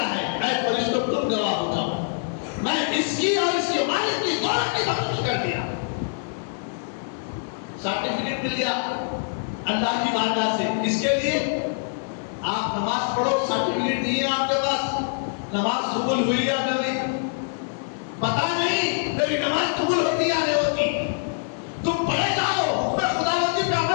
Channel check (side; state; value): right; silent; digital silence